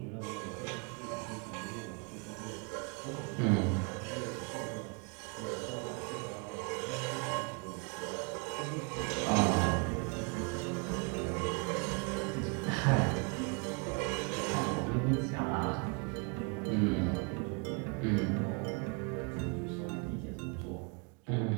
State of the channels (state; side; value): quieter; left; 33.9 dB